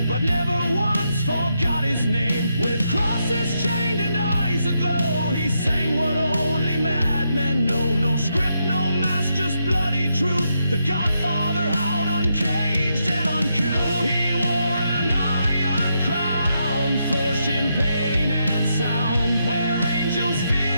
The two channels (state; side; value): inverted; both; correlation -0.81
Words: but never once forgot his name. With crosses chained and eyes aglow, he sang what only madmen know. No script, no mask, just bloody truth. The Godfather howled uncaged and uncouth. He wore an iron crown, forged in pain and sound. Where angels